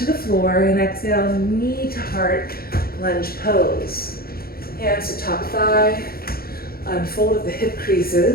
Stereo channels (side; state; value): right; late; 0.44 ms